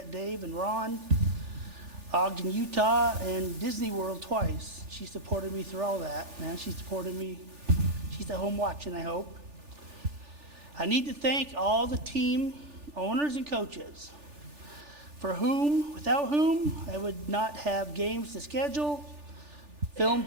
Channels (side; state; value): left; late; 3.4 ms